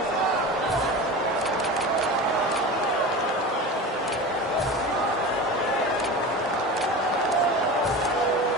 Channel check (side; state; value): both; normal; correlation 0.30